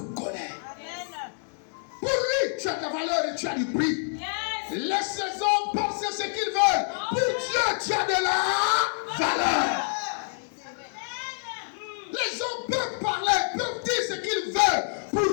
Amen. Pour lui, tu as de la valeur et tu as du prix. Yes. Laisse les hommes penser ce qu'ils veulent. Pour Dieu, tu as de la valeur. Les hommes peuvent parler, peuvent dire ce qu'ils veulent.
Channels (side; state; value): right; silent; digital silence